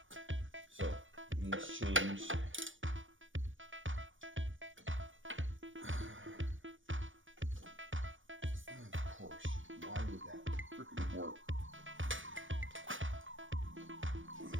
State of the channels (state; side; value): late; left; 0.57 ms